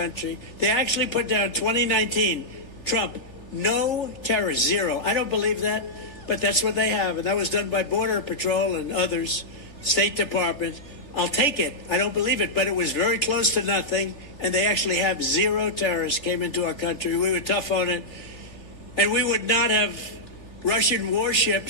They actually put down 2019, Trump, no terrorists, 0. I don't believe that. but that's what they have. And that was done by Border Patrol and others, State Department. I'll take it. I don't believe it, but it was very close to nothing. And they actually have 0 terrorists came into our country. We were tough on it. And we would not have Russian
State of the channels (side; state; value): right; late; 3.4 ms